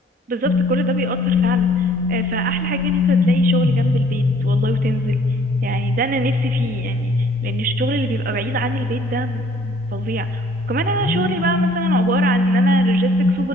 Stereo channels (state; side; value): normal; both; correlation 0.58